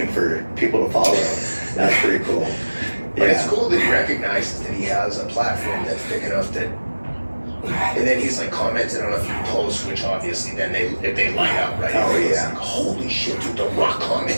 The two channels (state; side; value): inverted; both; correlation -1.00